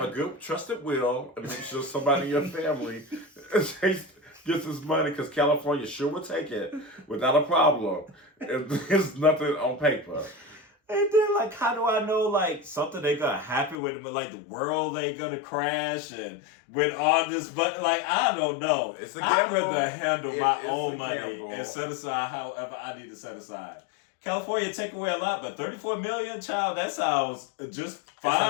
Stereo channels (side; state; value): right; drops out; at 13.8 s